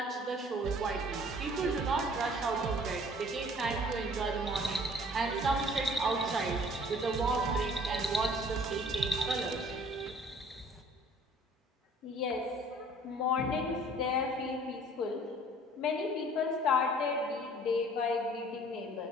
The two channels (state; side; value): normal; both; correlation 0.53